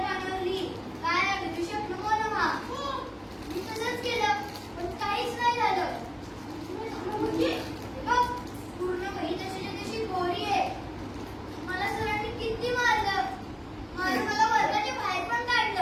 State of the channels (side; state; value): both; identical; correlation 1.00